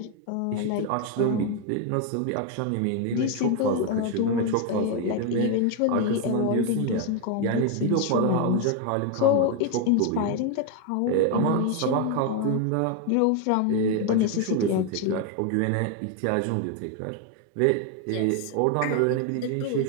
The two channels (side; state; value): both; different; correlation 0.01